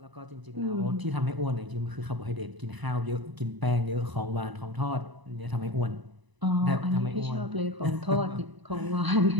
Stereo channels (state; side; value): late; left; 1.0 ms